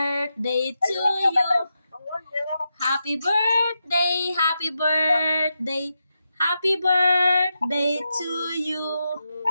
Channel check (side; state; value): both; inverted; correlation -0.87